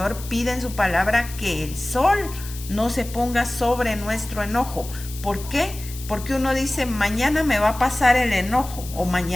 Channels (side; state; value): left; noise; hiss, 14 dB below the sound